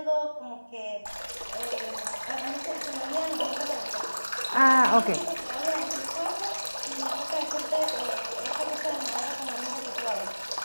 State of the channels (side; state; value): both; inverted; correlation -1.00